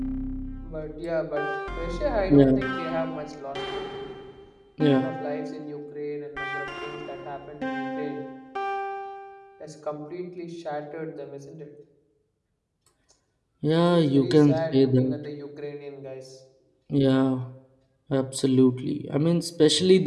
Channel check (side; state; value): both; identical; correlation 1.00